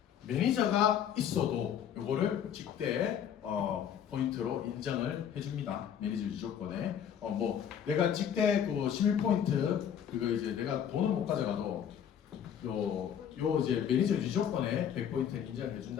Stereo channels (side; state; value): right; quieter; 8.9 dB